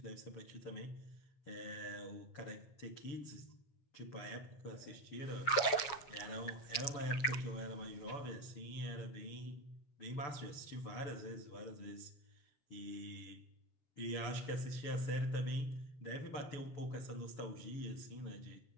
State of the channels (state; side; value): late; right; 7.2 ms